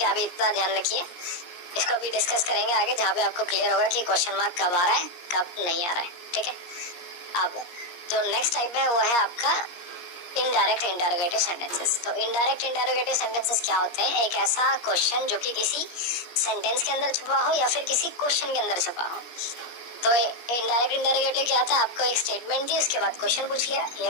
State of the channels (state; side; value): late; right; 17 ms